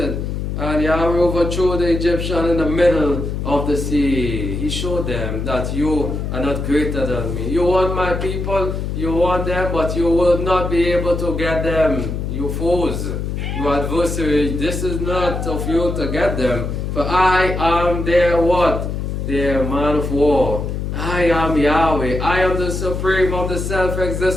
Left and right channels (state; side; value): noise; left; hum, 3 dB below the sound